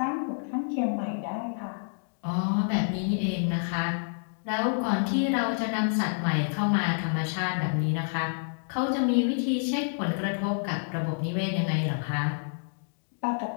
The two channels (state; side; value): silent; right; digital silence